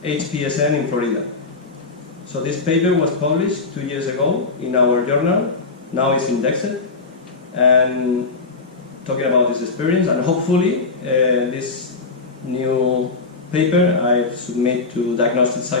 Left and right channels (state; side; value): quieter; right; 4.0 dB